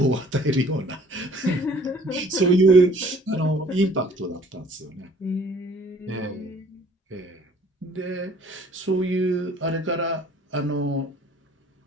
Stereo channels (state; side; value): normal; both; correlation 0.55